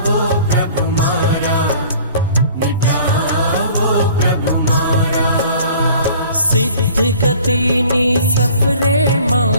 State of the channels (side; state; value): both; inverted; correlation -0.49